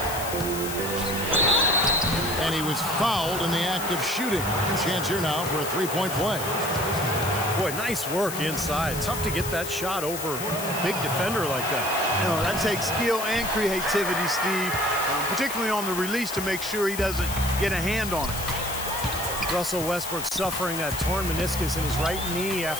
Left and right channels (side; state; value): left; noise; hiss, 8 dB below the sound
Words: And he was fouled in the act of shooting. Chance here now for a three-point play. Boy, nice work inside. Tough to get that shot over a big defender like that. You know, that takes skill and creativity, Steve. Particularly on the release to make sure he doesn't get a hand on it. Russell Westbrook suffering that torn meniscus in his right knee